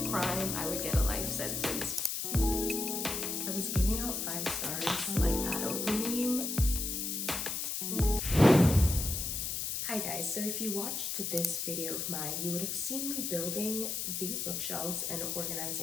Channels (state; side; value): noise; left; hiss, 2 dB below the sound